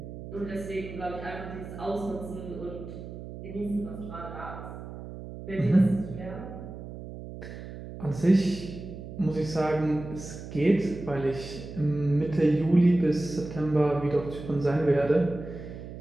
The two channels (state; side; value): noise; right; hum, 11 dB below the sound